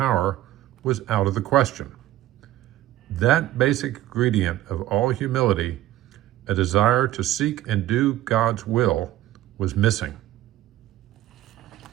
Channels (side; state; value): left; quieter; 14.6 dB